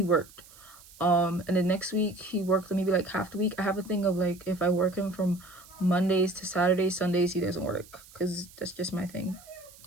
worked, and the next week he worked maybe like half the week. I have a thing of like, if I work him from Mondays to Saturdays, Sundays he doesn't work, because that's just my thing.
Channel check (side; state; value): right; noise; hiss, 22 dB below the sound